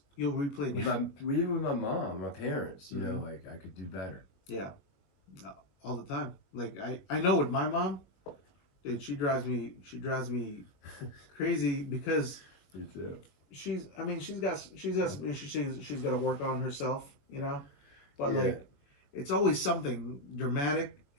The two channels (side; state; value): right; late; 21 ms